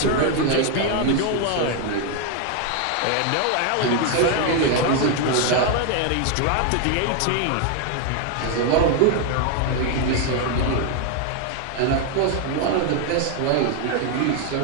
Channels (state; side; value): different; both; correlation 0.01